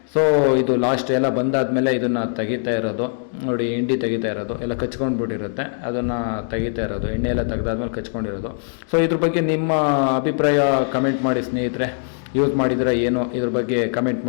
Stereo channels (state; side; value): silent; right; digital silence